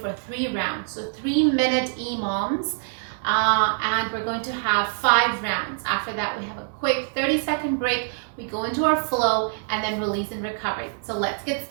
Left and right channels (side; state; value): left; silent; 62 dB below the other